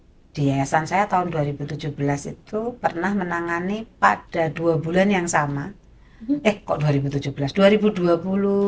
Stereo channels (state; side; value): identical; both; correlation 1.00